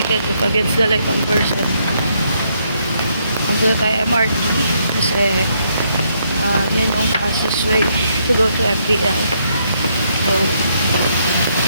against the light on person. Pupunta tayo MRT kasi yan yung fastest way to go to MPL. So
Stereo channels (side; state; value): both; inverted; correlation -0.74